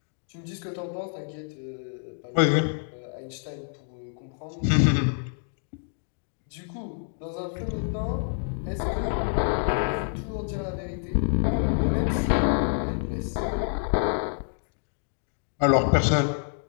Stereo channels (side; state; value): right; silent; 60 dB below the other